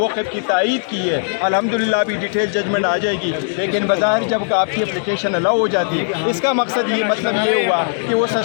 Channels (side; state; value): right; silent; digital silence